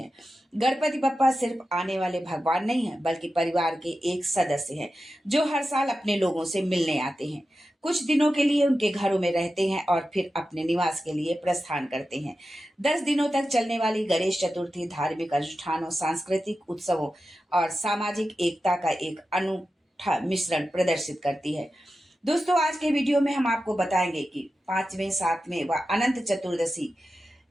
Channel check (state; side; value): normal; both; correlation 0.92